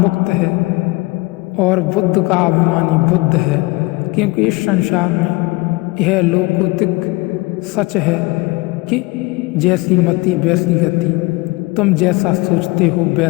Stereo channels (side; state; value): right; quieter; 23.8 dB